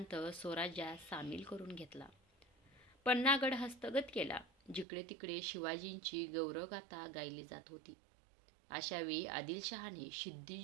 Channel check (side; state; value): left; drops out; at 4.9 s